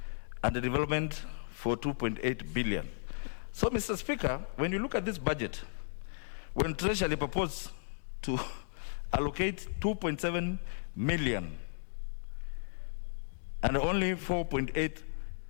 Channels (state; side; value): silent; right; digital silence